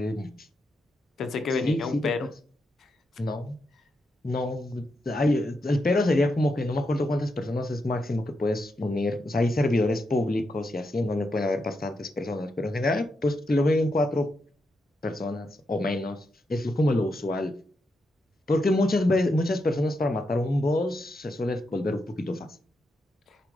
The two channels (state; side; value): normal; both; correlation 0.84